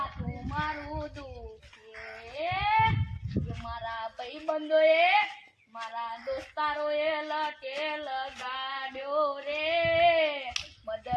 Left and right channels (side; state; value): both; identical; correlation 1.00